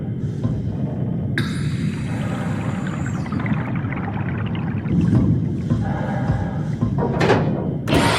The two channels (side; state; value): both; identical; correlation 1.00